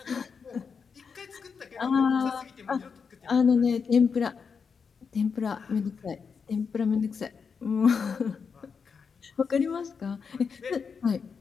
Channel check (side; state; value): right; quieter; 5.8 dB